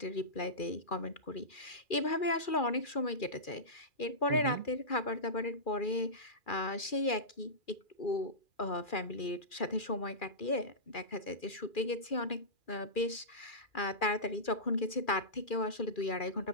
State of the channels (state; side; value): late; right; 2.4 ms